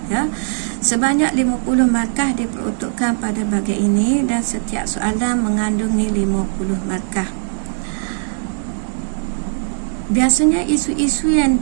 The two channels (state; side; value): silent; left; 58 dB below the other